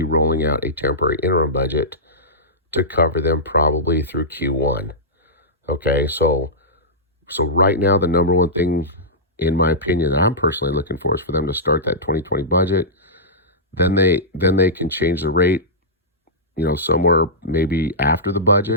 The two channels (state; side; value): normal; both; correlation -0.15